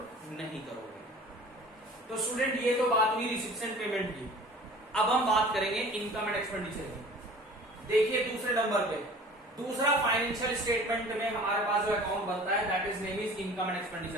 नहीं करोगे। तो स्टूडेंट ये तो बात हुई रिसिप्ट एंड पेमेंट की। अब हम बात करेंगे इनकम एंड एक्सपेंडिचर की। देखिए दूसरे नंबर पे दूसरा फाइनेंशियल स्टेटमेंट में हमारे पास जो अकाउंट बनता है that is name is income and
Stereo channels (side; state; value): both; normal; correlation 0.45